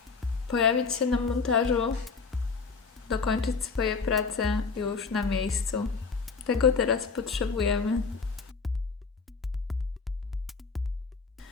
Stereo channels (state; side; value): quieter; right; 4.8 dB